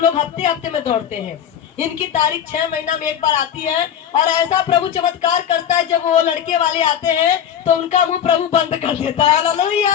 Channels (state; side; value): quieter; right; 9.2 dB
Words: हफ्ते हफ्ते में दौड़ते हैं, इनकी तारीख 6 महीना में एक बार आती है। और ऐसा प्रभु चमत्कार करता है, जब वो लड़के वाले आते हैं तो उनका मुंह प्रभु बंद कर देता है।